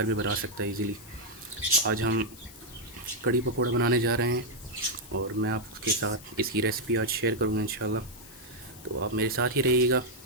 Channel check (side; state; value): left; noise; hiss, 19 dB below the sound